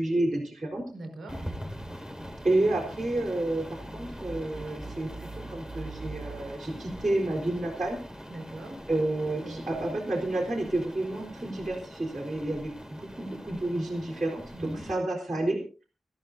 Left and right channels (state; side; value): normal; both; correlation 0.93